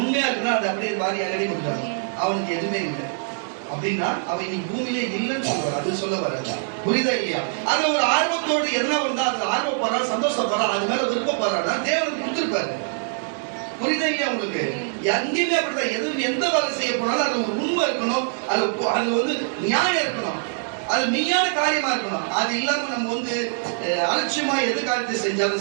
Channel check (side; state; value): left; silent; 63 dB below the other